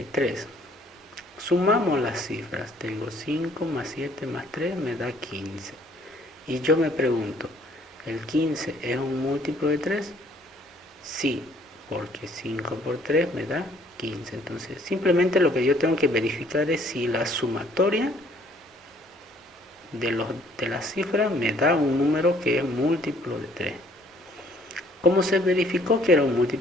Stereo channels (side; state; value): both; normal; correlation 0.61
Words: Sumamos las cifras. Tengo 5 más 7 más 3 me da 15. Y yo me pregunto, ¿el 15 es un múltiplo de 3? Sí, porque 5 por 3 me da 15. Entonces, simplemente lo que yo tengo que verificar es si la sumatoria de las cifras me da un número que es múltiplo de 3. ¿Cómo se verificó que era un